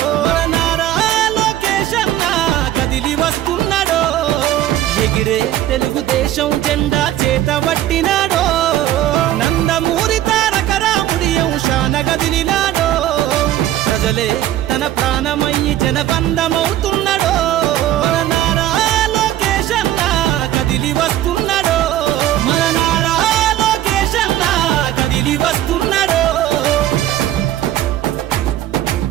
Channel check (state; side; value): quieter; left; 13.0 dB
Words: మన నారా లోకేష్ అన్న కదిలి వస్తున్నాడో ఎగిరే తెలుగుదేశం జెండా చేతబట్టినాడో నందమూరి తారక రాముడి అంశాన కదిలినాడో ప్రజలే తన ప్రాణమయ్యి జనబంధమవుతున్నాడో మన నారా లోకేష్ అన్న కదిలి వస్తున్నాడో